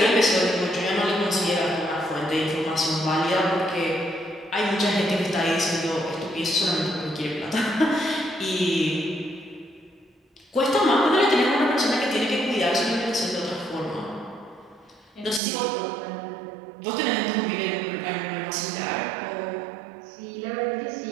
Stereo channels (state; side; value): drops out; left; at 15.4 s